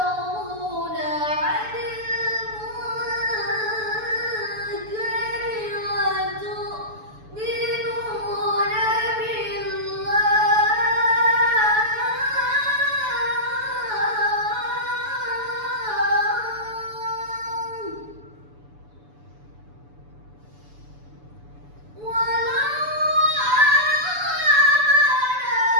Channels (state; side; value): late; left; 7.0 ms